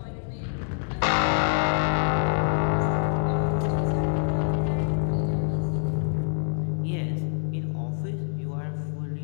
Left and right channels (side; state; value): right; silent; digital silence